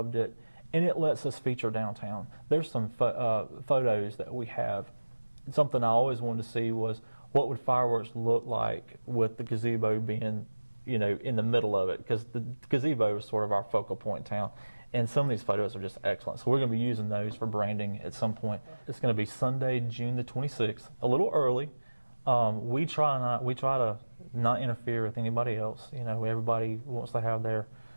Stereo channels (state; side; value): inverted; both; correlation -1.00